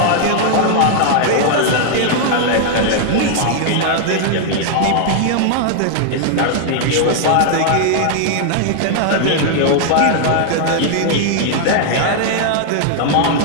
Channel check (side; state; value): both; different; correlation 0.00